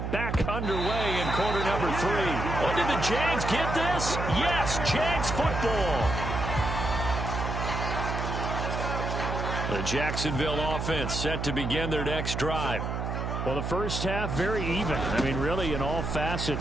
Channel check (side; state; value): right; noise; hum, 3 dB below the sound